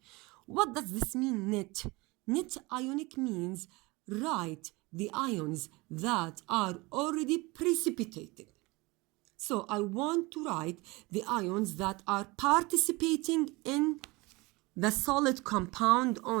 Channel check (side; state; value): left; quieter; 24.0 dB